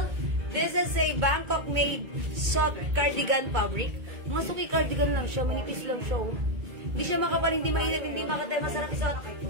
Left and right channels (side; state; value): left; late; 2.2 ms